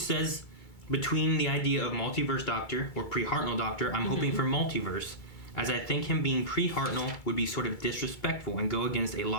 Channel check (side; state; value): right; late; 2.3 ms